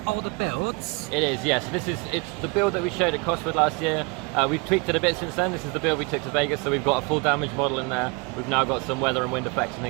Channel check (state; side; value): quieter; left; 30.0 dB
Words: older build? It is, yes. It's the build that we showed at Cosford last year. We've tweaked it a bit since then. This is the build we took to Vegas, so we've got a full damage model in there. We've now got some weather and wind effects and